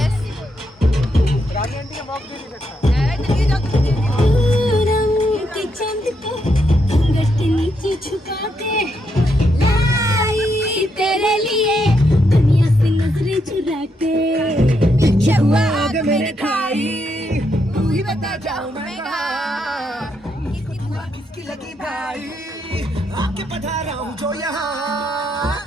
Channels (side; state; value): both; normal; correlation 0.79